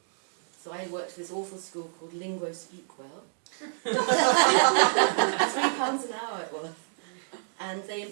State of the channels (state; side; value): silent; left; digital silence